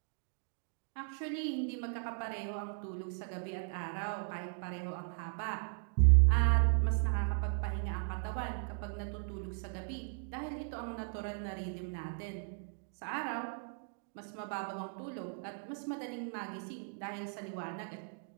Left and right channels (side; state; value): left; silent; 53 dB below the other